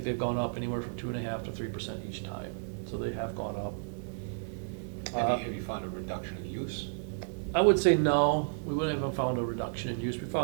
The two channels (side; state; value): left; silent; digital silence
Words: they've gone up anywhere from 2.5% to 3% each time, so they have gone up. Have you found a reduction in use? I would say no, we wouldn't have found a reduction in use. We